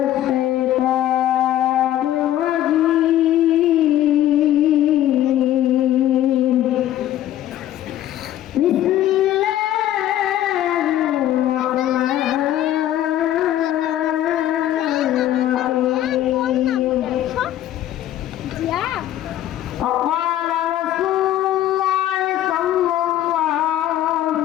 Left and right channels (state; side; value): quieter; right; 12.6 dB